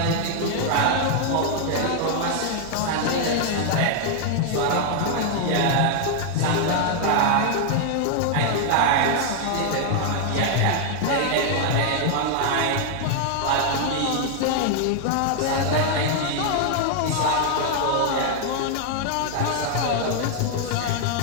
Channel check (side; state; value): both; different; correlation 0.00